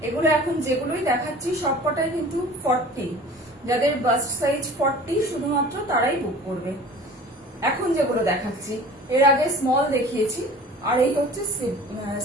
এগুলো এখন যেগুলোই দেখাচ্ছি সবকটাই কিন্তু 40, যাদের বাস্ট সাইজ 40 শুধুমাত্র তারাই বুক করবে। এখন যেগুলো দেখাচ্ছি, এর আগে স্মল দেখিয়েছি, আর এই হচ্ছে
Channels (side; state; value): both; normal; correlation 0.43